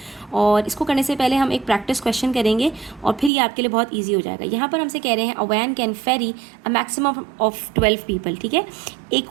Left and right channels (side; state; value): left; drops out; at 3.3 s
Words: और इसको करने से पहले हम एक प्रैक्टिस क्वेश्चन करेंगे और फिर ये आपके लिए बहुत ईजी हो जाएगा। यहाँ पर हमसे कह रहे हैं a van can ferry a maximum of 12 people, ठीक है।